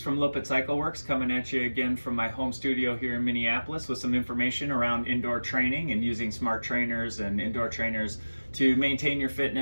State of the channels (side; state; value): both; inverted; correlation -1.00